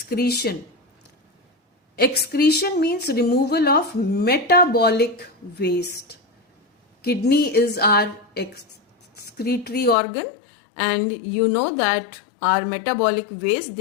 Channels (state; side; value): drops out; right; at 10.0 s